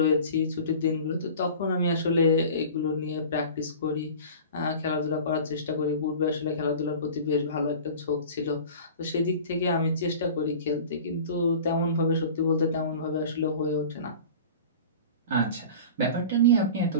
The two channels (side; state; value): both; inverted; correlation -0.39